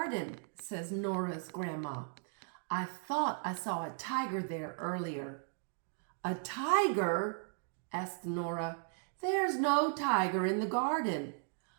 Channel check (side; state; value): left; silent; 54 dB below the other